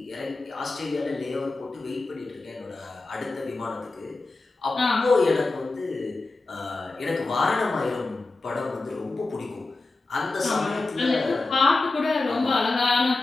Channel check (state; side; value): quieter; right; 3.4 dB